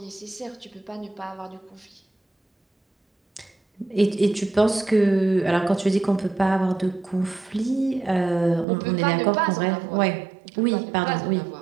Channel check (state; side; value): drops out; left; at 8.7 s